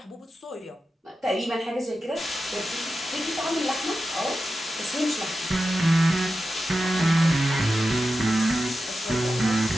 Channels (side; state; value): both; normal; correlation 0.91